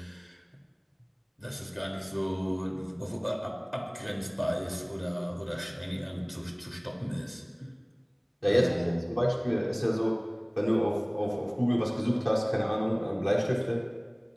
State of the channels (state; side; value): identical; both; correlation 1.00